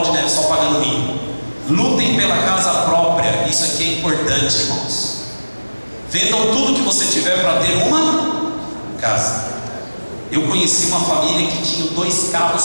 de neve só pagando mínimo. Lutem pela casa própria. Isso aqui é importante, irmãos. Vendam tudo que você tiver para ter uma casa. Eu conheci uma família que tinha 2 carros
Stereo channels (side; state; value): both; inverted; correlation -1.00